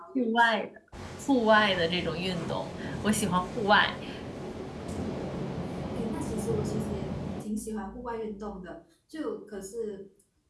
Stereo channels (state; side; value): identical; both; correlation 1.00